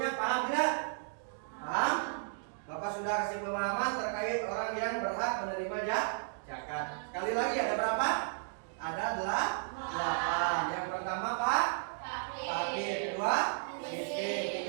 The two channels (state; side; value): silent; left; digital silence